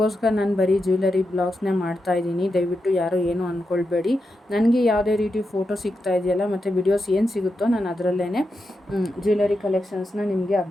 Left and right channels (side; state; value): both; normal; correlation 0.87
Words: ನಾನು ಬರೀ ಜ್ಯುವೆಲರಿ ಬ್ಲಾಗ್ಸ್ನೇ ಮಾಡ್ತಾಯಿದ್ದೀನಿ. ದಯವಿಟ್ಟು ಯಾರೂ ಏನೂ ಅಂದ್ಕೊಳ್ಬೇಡಿ. ನನಗೆ ಯಾವುದೇ ರೀತಿ ಫೋಟೋ ಸಿಗ್ತಾ ಇದೆಯಲ್ಲ ಮತ್ತು ವಿಡಿಯೋಸ್ ಏನು ಸಿಗುತ್ತೋ ನಾನು ಅದರಲ್ಲೇ ಜ್ಯುವೆಲರಿ ಕಲೆಕ್ಷನ್ಸ್ನ ನಿಮಗೆ